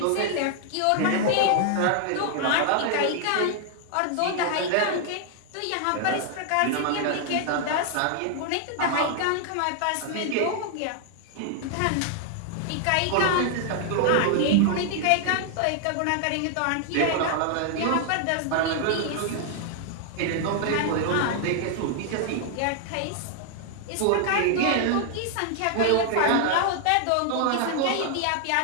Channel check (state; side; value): different; both; correlation 0.00